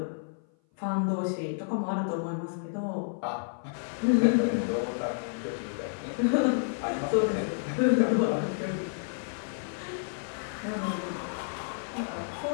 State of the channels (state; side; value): silent; right; 56 dB below the other